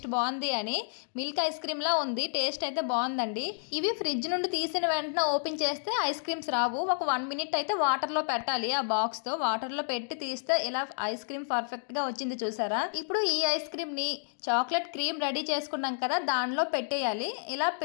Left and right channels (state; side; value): silent; right; digital silence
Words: బాగుంది అని. మిల్క్ ఐస్ క్రీమ్లా ఉంది, టేస్ట్ అయితే బాగుందండి. ఇవి ఫ్రిడ్జ్ నుండి తీసిన వెంటనే ఓపెన్ చేస్తే ఐస్ క్రీమ్స్ రావు. ఒక 1 మినిట్ అయితే వాటర్లో పెట్టాలి. ఆ బాక్స్తో వాటర్లో పెట్టి తీస్తే ఇలా ఐస్ క్రీమ్ పర్ఫెక్ట్గా వచ్చింది. చూసారా? ఇప్పుడు ఈ ఐస్ క్రీమ్ని చాక్లెట్ క్రీమ్ రెడీ చేసుకున్నాం కదా, దానిలో పెట్టేయాలి. ఇలా